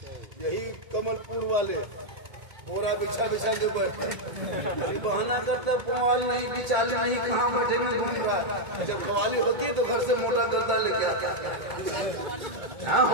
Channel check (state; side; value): late; left; 1.8 ms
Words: यही कमलपुर वाले बोरा बिछा बिछा के बैठते अभी बहाना करते पुआल नहीं बिचाली नहीं कहाँ बैठेंगे घूम रहा है। जब कवाली होती है तो घर से मोटा गद्दा लेके आता हाँ